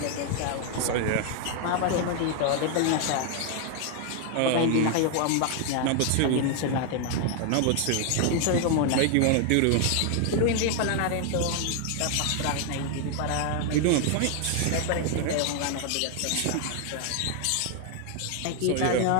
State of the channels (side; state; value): both; different; correlation 0.00